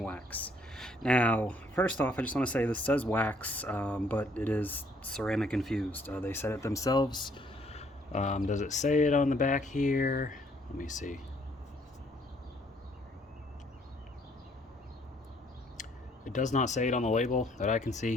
Wax. Now, first off, I just want to say this says wax, but it is ceramic infused. They said it themselves. Does it say it on the back here? Let me see. It does not say it on the label that I can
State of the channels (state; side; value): normal; both; correlation 0.65